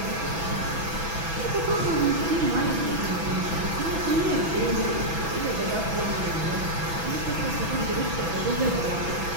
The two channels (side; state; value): left; late; 6.0 ms